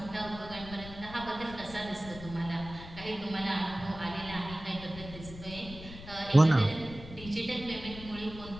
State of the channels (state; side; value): noise; left; rumble, 14 dB below the sound